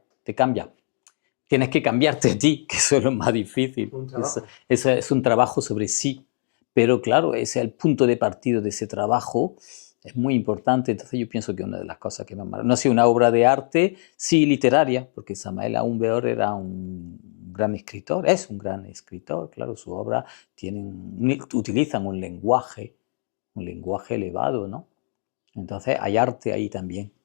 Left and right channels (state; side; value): silent; right; 60 dB below the other